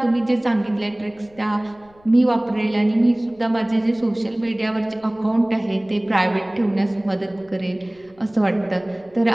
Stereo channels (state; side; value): noise; left; rumble, 29 dB below the sound